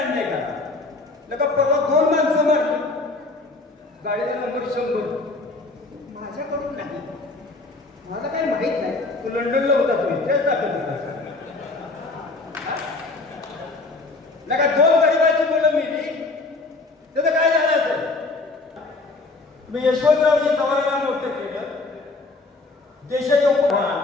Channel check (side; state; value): right; quieter; 3.4 dB